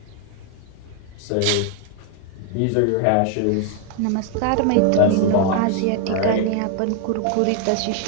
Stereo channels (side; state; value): both; different; correlation 0.01